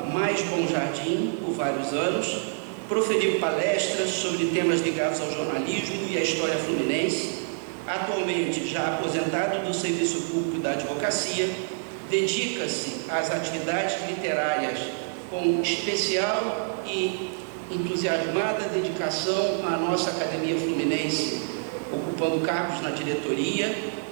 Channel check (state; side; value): silent; left; digital silence